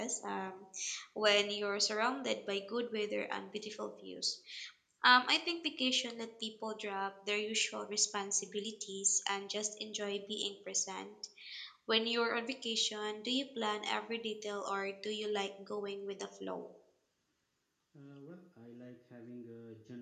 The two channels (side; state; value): both; identical; correlation 1.00